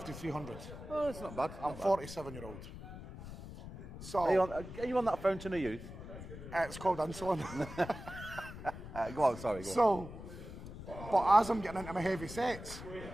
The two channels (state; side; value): noise; left; rumble, 12 dB below the sound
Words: 300. Oh, it's not bad. I'm 47-year-old. So Are you on that fountain of youth? It's called insulin. Go on, sorry. So, but as I'm getting into my heavy sets,